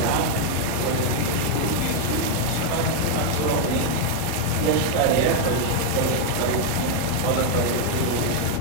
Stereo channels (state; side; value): different; both; correlation 0.00